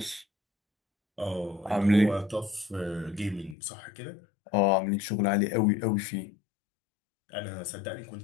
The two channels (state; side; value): drops out; right; at 3.6 s